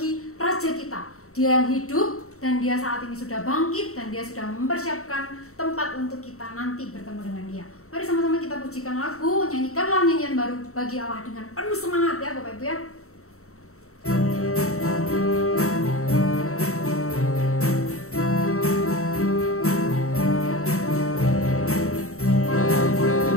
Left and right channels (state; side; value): late; right; 0.64 ms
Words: Raja kita. Dia yang hidup dan dia saat ini sudah bangkit dan dia sudah mempersiapkan tempat untuk kita nanti bertemu dengan dia. Mari sama-sama kita pujikan lagu, nyanyikanlah nyanyian baru bagi Allah dengan penuh semangat ya Bapak Ibu ya.